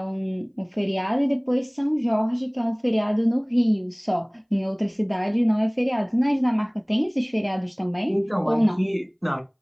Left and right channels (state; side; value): identical; both; correlation 1.00